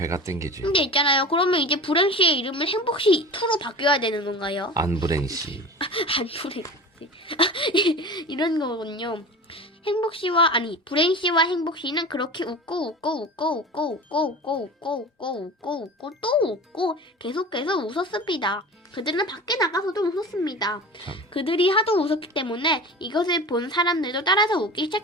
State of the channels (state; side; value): normal; both; correlation 0.34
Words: 땡기지. 근데 있잖아요. 그러면 이제 불행씨의 이름은 행복씨 2로 바뀌어야 되는 건가요? 안불행씨. 안불행씨. 이런 거군요. 불행씨와 행복씨는 그렇게 웃고 또 웃고 계속해서 웃었습니다. 그들은 밖에 나가서도 웃었습니다. 그들이 하도 웃었기 때문에 이것을 본 사람들도 따라서 웃기